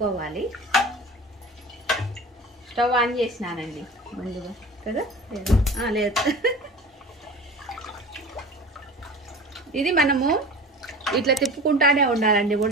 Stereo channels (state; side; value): normal; both; correlation 0.37